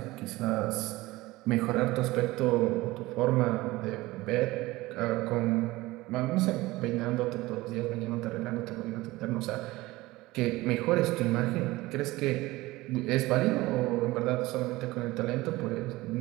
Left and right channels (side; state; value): left; quieter; 19.5 dB